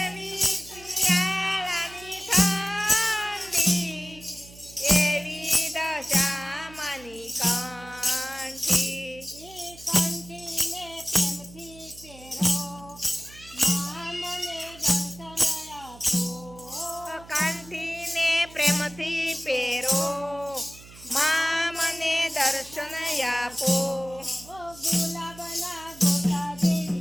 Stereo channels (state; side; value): noise; right; hum, 19 dB below the sound